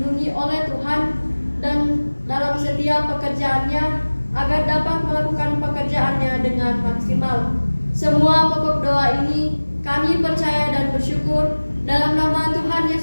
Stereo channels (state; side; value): inverted; both; correlation -1.00